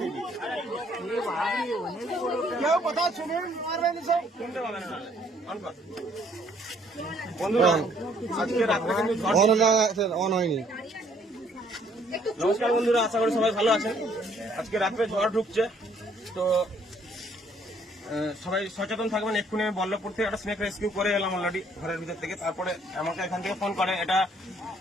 কেউ কথা শুনুন, মারবেন সব শুনতে পাবেন না। বন্ধুরা আজকে রাত্রে কিন্তু অন হয়নি। নমস্কার বন্ধুরা, আশা করি সবাই ভালো আছেন। আজকে রাত্রে ঝড় ঢুকছে, তো সবাই সচেতন থাকবেন। এক্ষুনি আমি বল্লভপুর থেকে একটা স্নেক রেস্কিউ করে এলাম অলরেডি ঘরের ভিতর থেকে। তারপরে আমাকে এখান থেকে ফোন করে। এটা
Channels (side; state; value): both; normal; correlation 0.64